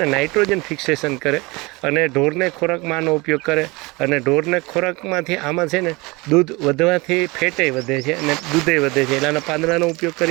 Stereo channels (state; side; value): quieter; left; 24.6 dB